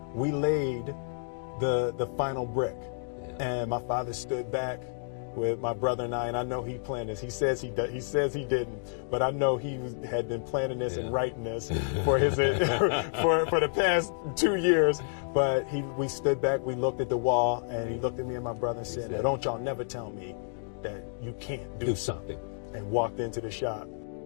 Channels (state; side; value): silent; right; digital silence